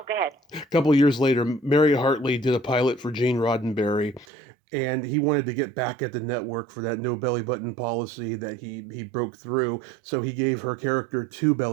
ahead. A couple years later, Mary Hartley did a pilot for Gene Roddenberry, and he wanted to get back at the network for that no belly button policy that he broke through. So he gave her character 2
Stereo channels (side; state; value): left; drops out; at 4.2 s